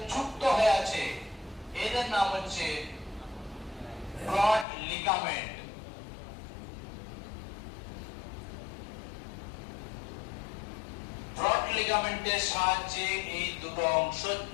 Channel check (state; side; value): drops out; right; at 4.7 s